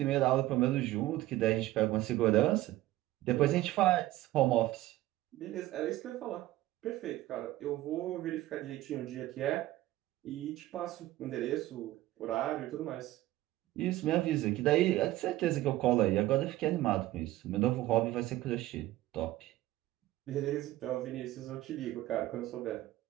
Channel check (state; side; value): quieter; left; 16.1 dB